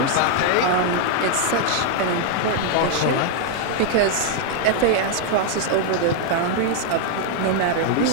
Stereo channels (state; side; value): different; both; correlation 0.00